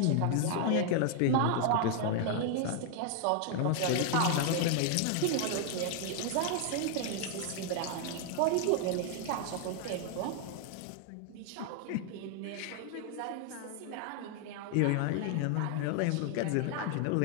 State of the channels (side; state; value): both; different; correlation 0.00